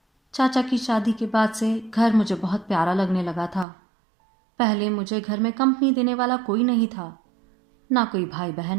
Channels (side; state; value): left; drops out; at 3.7 s